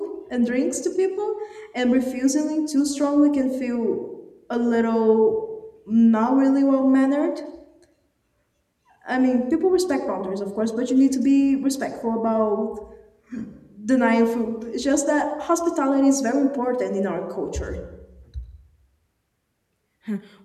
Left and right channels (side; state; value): both; identical; correlation 1.00